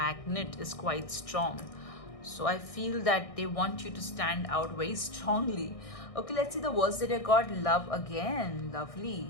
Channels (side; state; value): right; late; 1.6 ms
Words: is quite strong. So I feel that they want you to stand out very strongly. Okay, let's see the words that you got. Love again.